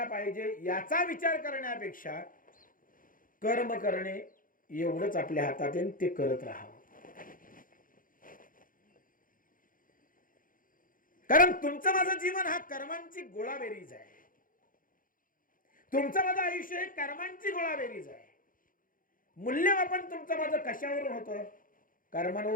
पाहिजे याचा विचार करण्यापेक्षा कर्म करणे एवढंच आपल्या हातात आहे, ते करत राहावं. कारण तुमचं माझं जीवन हा कर्मांची गोळाबेरीज आहे. तुमचं माझं आयुष्य हे कर्मांची गोळाबेरीज आहे. मूल्यमापन तुमचं माझं कशावरून होतं?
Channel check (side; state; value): right; late; 0.40 ms